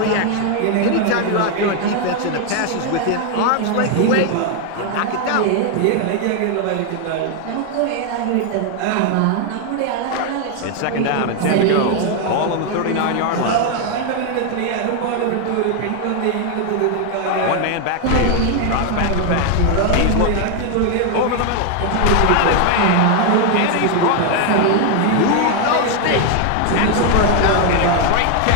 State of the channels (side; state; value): both; different; correlation 0.00